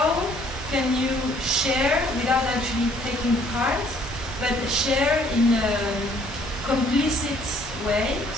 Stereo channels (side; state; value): both; normal; correlation 0.61